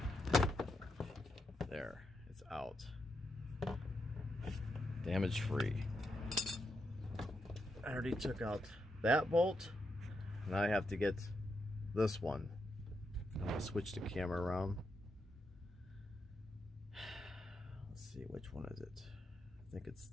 There, it's out. Damage free. I already took out that bolt. Now I have to get this one. I'm gonna switch the camera around. Let's see, which one is it? I think it's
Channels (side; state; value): both; normal; correlation 0.83